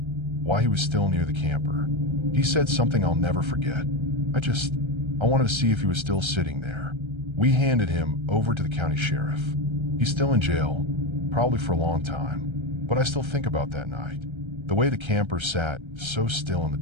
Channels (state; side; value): late; left; 1.3 ms